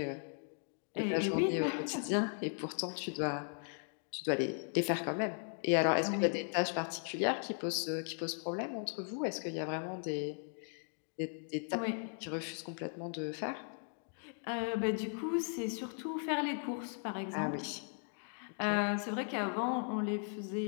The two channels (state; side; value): silent; right; 53 dB below the other